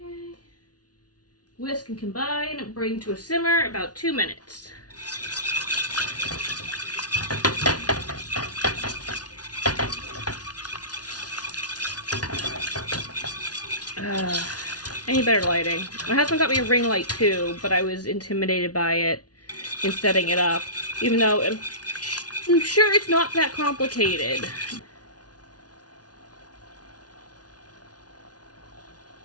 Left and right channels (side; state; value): right; late; 0.69 ms